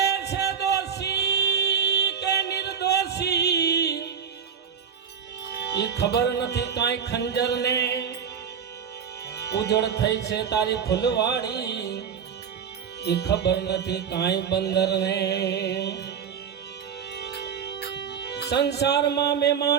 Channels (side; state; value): left; quieter; 7.3 dB